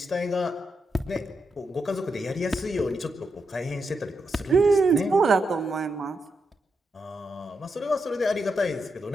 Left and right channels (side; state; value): both; normal; correlation 0.84